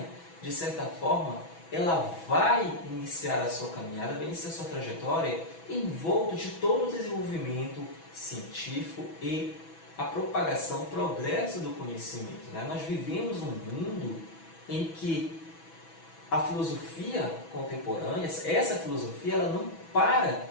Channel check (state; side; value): late; right; 6.1 ms